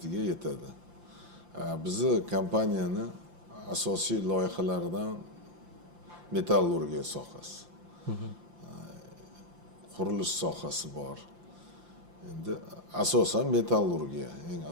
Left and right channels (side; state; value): left; late; 5.8 ms